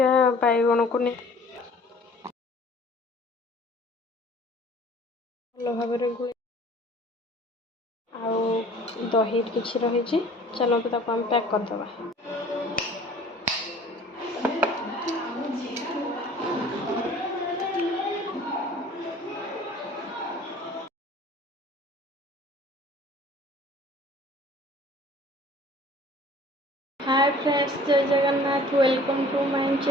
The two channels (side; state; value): both; normal; correlation 0.49